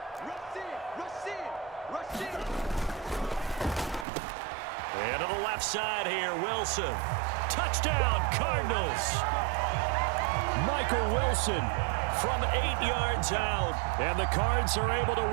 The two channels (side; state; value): left; drops out; at 4.0 s